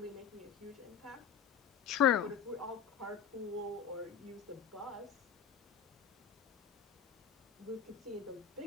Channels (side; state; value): right; quieter; 7.6 dB